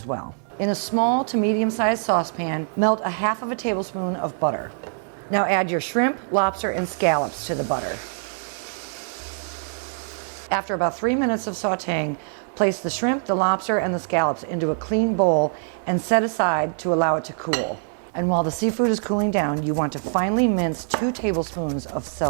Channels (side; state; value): left; silent; digital silence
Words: well. In a small to medium-sized saucepan, melt 1/2 tablespoon of butter. Now add your shrimp, lobster, and scallops to the butter. After about 3 minutes of sautéing, place the shrimp, the lobster, and the scallops into a clean bowl and set aside to allow it to cool. And while the seafood is cooling down, you want to finely mince 2 tablespoons of